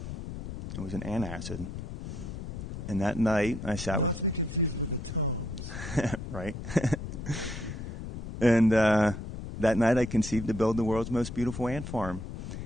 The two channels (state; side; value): noise; left; rumble, 8 dB below the sound